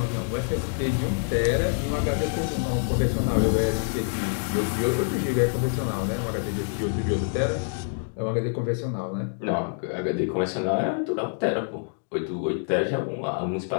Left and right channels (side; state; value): right; silent; 61 dB below the other